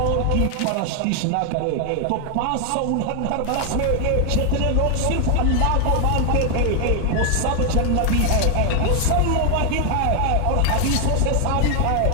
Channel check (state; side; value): different; both; correlation 0.00